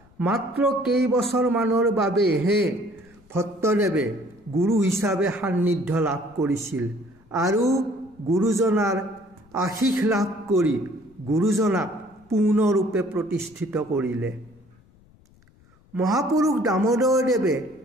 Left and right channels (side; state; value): left; noise; rumble, 29 dB below the sound